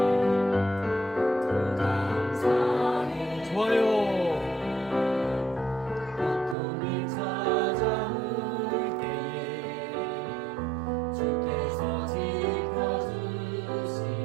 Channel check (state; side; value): drops out; left; at 6.6 s